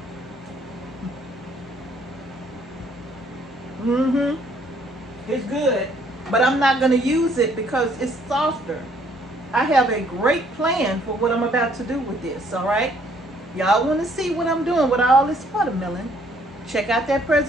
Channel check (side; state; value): both; normal; correlation 0.64